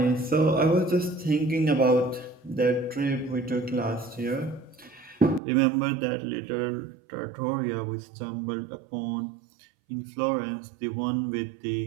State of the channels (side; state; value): left; drops out; at 5.4 s